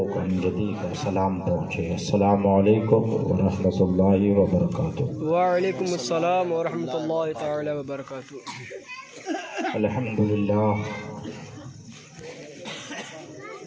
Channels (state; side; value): identical; both; correlation 1.00